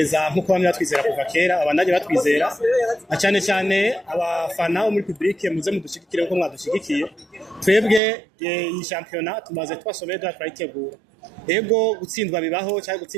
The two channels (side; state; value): left; drops out; at 8.0 s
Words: nkuko bamwe batwizera kuva kera abandanye batwizera cyane cyane abafana bo muri public muze mudushigikire uko mwadushigikiye twebwe iyi championnat tumaze twasomeye turayitegura ego gutsindwa bibaho cyangwa